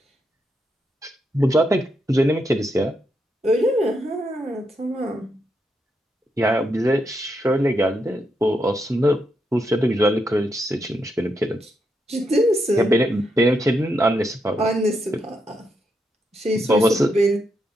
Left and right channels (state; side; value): normal; both; correlation 0.81